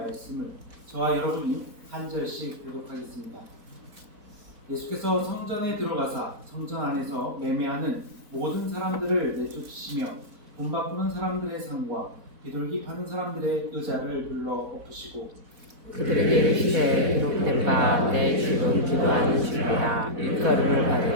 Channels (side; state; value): left; late; 4.1 ms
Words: 저와 여러분이 한 절씩 교독하겠습니다. 예수께서 성전에 들어가사 성전 안에서 매매하는 모든 사람들을 내쫓으시며 돈 바꾸는 사람들의 상과 비둘기 파는 사람들의 의자를 불러 엎으시고 그들에게 이르시되 기록된 바 내 집은 기도하는 집이라 일거림을